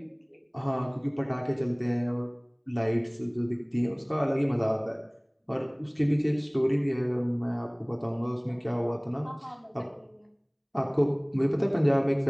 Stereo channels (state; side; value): identical; both; correlation 1.00